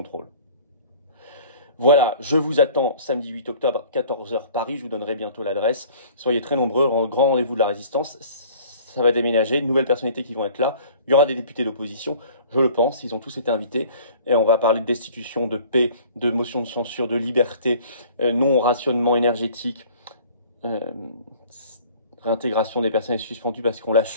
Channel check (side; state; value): both; inverted; correlation -0.50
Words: Voilà, je vous attends samedi 8 octobre, 14 h Paris. Je vous donnerai bientôt l'adresse. Soyez très nombreux, grand rendez-vous de la résistance. Ça va déménager, de nouvelles personnalités qui vont être là. Il y aura des députés d'opposition, je le pense, ils ont tous été invités. Et on va parler de destitution, de paix, de motion de censure, de liberté, non-rationnement énergétique, réintégration des personnels suspendus parce qu'on